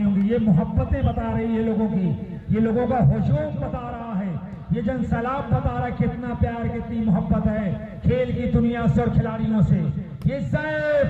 होंगे। ये मोहब्बतें बता रही है लोगों की, ये लोगों का हुजूम बता रहा है, ये जन सैलाब बता रहा है कितना प्यार, कितनी मोहब्बत है खेल की दुनिया से और खिलाड़ियों से। ये ज़ैफ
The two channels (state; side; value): identical; both; correlation 1.00